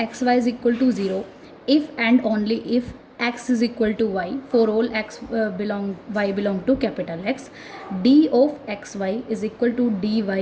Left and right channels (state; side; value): identical; both; correlation 1.00